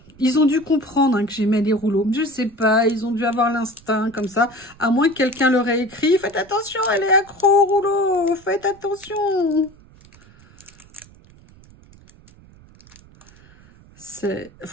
Ils ont dû comprendre, hein, que j'aimais les rouleaux. Je sais pas, ils ont dû avoir l'instinct comme ça. À moins que quelqu'un leur ait écrit, faites attention, elle est accro au rouleau, faites attention.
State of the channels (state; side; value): noise; right; rumble, 25 dB below the sound